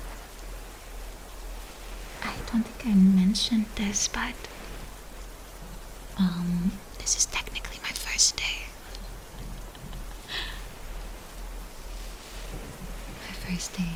I don't think I mentioned this, but this is technically my first day. My first day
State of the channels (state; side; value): identical; both; correlation 1.00